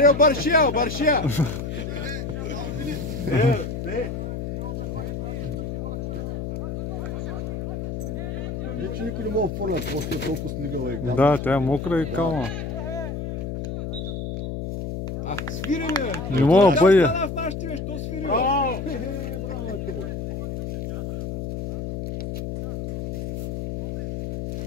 баршия, баршия! Вече никой не мога да фърнат, просто е толкова снигала и капа. Да, тя е мокра и калма. Свири, бе! Не мога да бъде. В нашите, бе, що свири, бе? Браво! Браво, те, бе!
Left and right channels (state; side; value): noise; left; hum, 5 dB below the sound